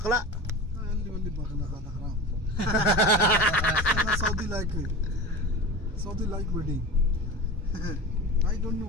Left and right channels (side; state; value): both; normal; correlation 0.32